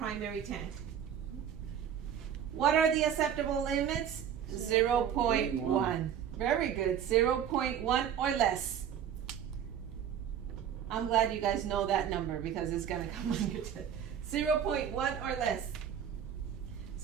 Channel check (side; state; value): left; quieter; 8.9 dB